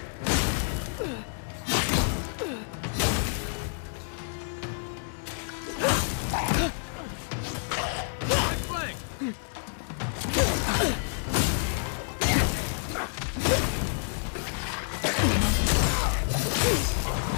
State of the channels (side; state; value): right; silent; digital silence